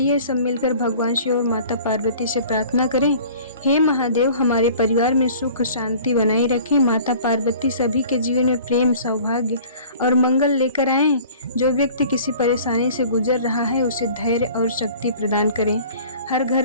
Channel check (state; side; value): inverted; both; correlation -0.48